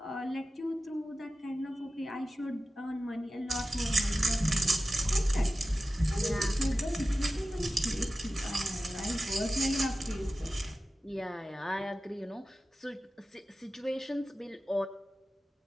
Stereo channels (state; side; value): normal; both; correlation 0.94